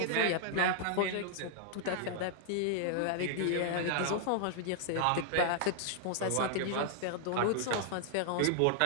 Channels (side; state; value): both; different; correlation -0.01